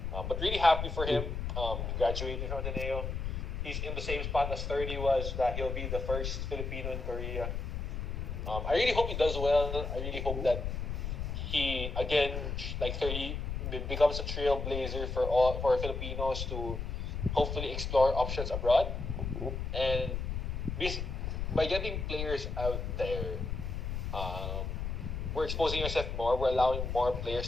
But really happy for him. Graduating from Ateneo. He's in the same spot as Thirdy was, that he'll be the first Filipino in Korea. I really hope he does well. I really hope that he, again, like Thirdy, becomes a trailblazer for Filipinos to hopefully explore options abroad. And by getting players out there, we're exposing ourselves more. We're allowing more players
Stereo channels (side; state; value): left; noise; rumble, 3 dB below the sound